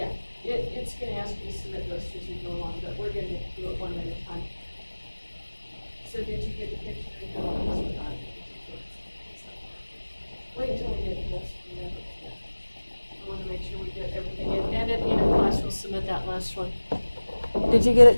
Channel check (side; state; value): both; inverted; correlation -1.00